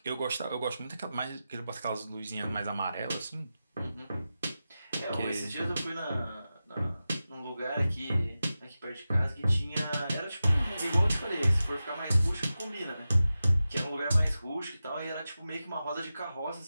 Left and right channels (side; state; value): both; inverted; correlation -0.93